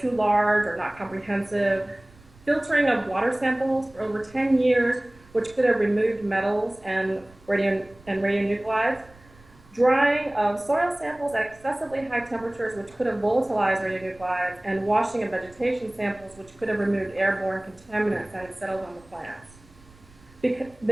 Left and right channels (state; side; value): noise; right; rumble, 26 dB below the sound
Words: large or not comprehensive, filtering of water samples for over 10 years, which could have removed metals and radionuclides, drying of soil samples at excessively high temperatures, which could have volatilized radionuclides, and washing of vegetation samples, which could have removed airborne contaminants that had settled on the plants.